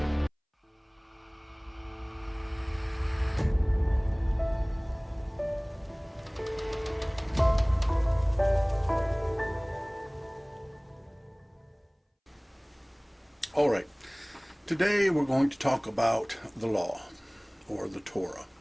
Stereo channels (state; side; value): identical; both; correlation 1.00